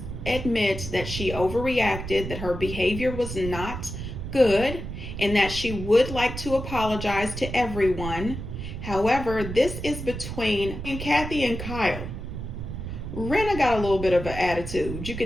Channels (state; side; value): noise; right; rumble, 7 dB below the sound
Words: admit that she overreacted, that her behavior was not good, and that she would like to apologize to everyone. However, this is between Kathy and Kyle. Rinna got a little bit of an attitude. You